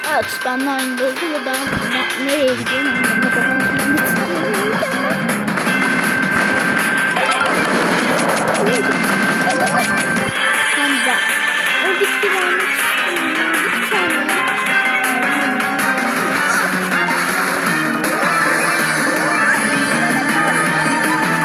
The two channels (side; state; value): both; identical; correlation 1.00